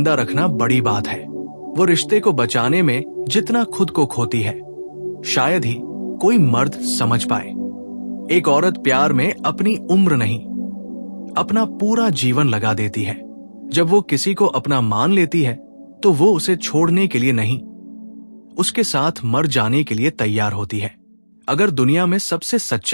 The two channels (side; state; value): both; inverted; correlation -1.00